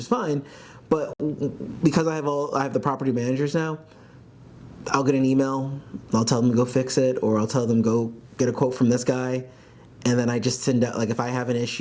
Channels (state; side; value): identical; both; correlation 1.00